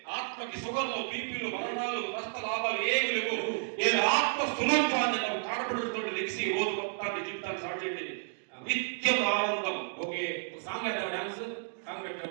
ఆత్మకి సుగర్లు, బీపీలు, మరణాలు, నష్ట లాభాలు ఏమి లేవు. నేను ఆత్మ స్వరూపాన్ని నాకు కాడపడుతూ లెగిసి రోజు మొత్తాన్ని జీవితాన్ని స్టార్ట్ చేయండి. నిత్యం ఆనందం. ఓకే, సాంగ్ పెట్టావు, డాన్స్ సాంగ్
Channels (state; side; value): silent; left; digital silence